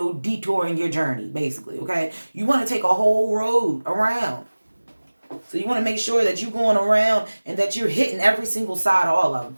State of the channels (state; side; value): inverted; both; correlation -1.00